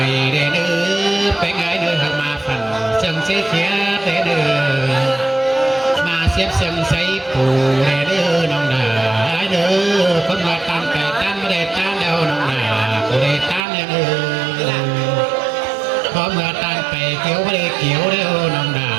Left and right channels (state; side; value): drops out; left; at 13.6 s